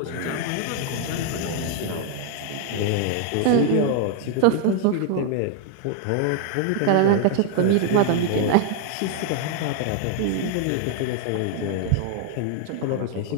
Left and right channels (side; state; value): both; different; correlation 0.00